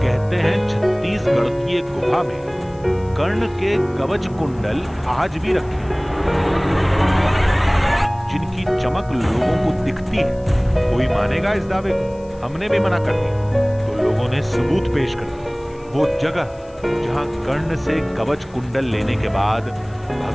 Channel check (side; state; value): left; noise; hiss, 30 dB below the sound